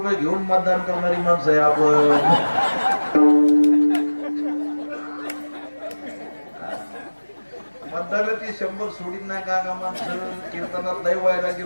घेऊन मतदान करणारी माणसं आहे आपण. मतदानाची 100 सोडीत नाही का माणसं? कीर्तनात लय वैराग्य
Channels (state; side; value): inverted; both; correlation -1.00